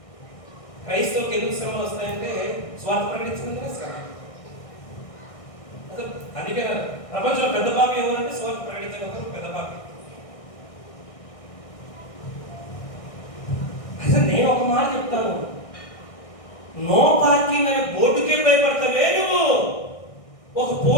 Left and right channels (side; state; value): right; late; 1.6 ms